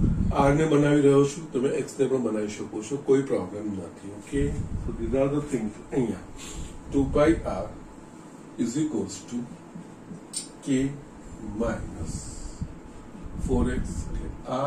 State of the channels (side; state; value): both; identical; correlation 1.00